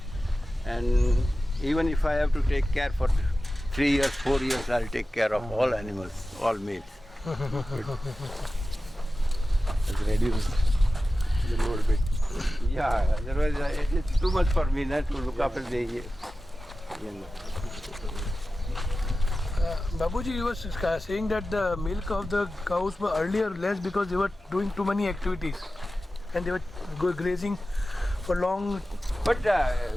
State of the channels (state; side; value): normal; both; correlation 0.94